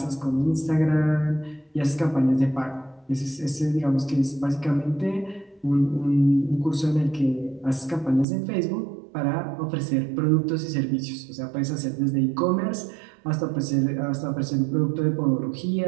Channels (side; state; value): left; drops out; at 8.2 s